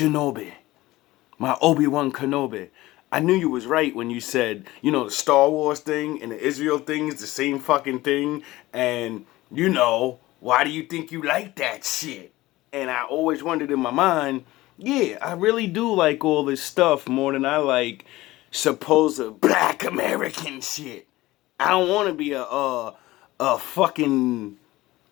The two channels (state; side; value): quieter; right; 18.1 dB